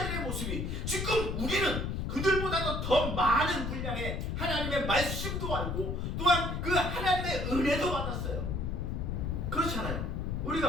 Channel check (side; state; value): left; noise; rumble, 2 dB below the sound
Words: 모습이 지금 우리는 그들보다도 더 많은 분량의 하나님의 말씀도 알고 또한 그 하나님의 은혜도 받았어요. 그렇잖아요.